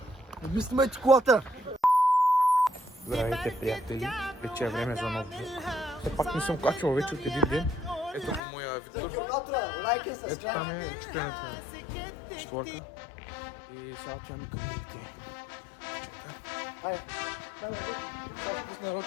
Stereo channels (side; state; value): right; drops out; at 8.4 s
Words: Не снимайте колата! Здравейте, приятели! Вече е време за нов влог. Все пак не съм качвал вече от един ден. Ето го моя Виктор. Ето там е чупената створка. И сега отиваме към Виктор.